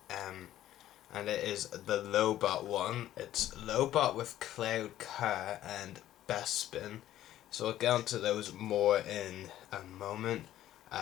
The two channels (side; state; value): right; quieter; 13.0 dB